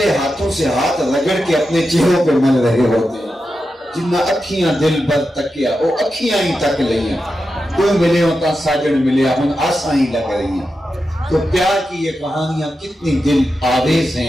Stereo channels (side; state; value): both; normal; correlation 0.89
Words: ہاتھوں سے ہاتھ رگڑ کے اپنے چہروں پہ مل رہے ہوتے ہیں۔ جنہ اکھیاں دل بر تکیا، وہ اکھیاں ہی تک لئیاں، تو ملے ہوتا ساجن ملے ہم آساں ہی لگ رہی ہیں۔ تو پیار کی یہ کہانیاں کتنی دل آویز